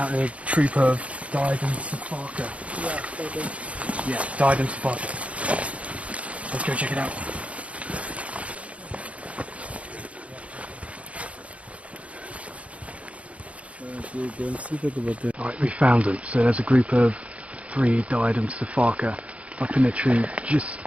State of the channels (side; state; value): left; late; 0.064 ms